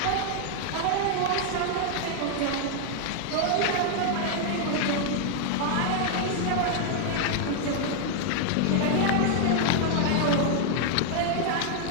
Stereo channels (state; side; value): different; both; correlation 0.00